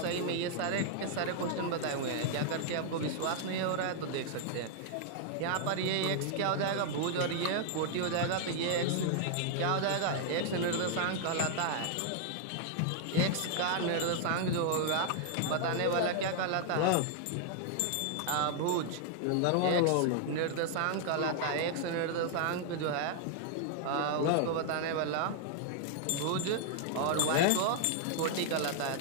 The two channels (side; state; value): both; different; correlation -0.01